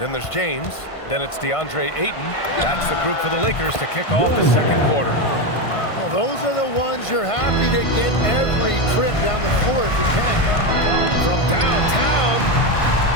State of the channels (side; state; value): right; late; 1.5 ms